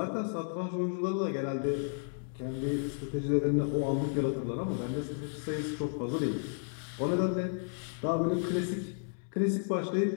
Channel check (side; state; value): right; silent; digital silence